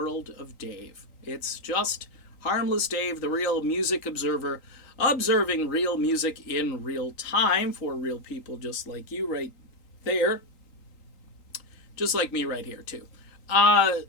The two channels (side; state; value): right; late; 3.8 ms